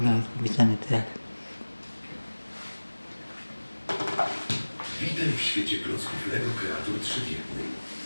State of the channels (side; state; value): both; inverted; correlation -1.00